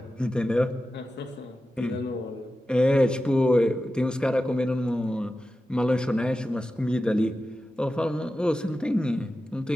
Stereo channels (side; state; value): both; normal; correlation 0.93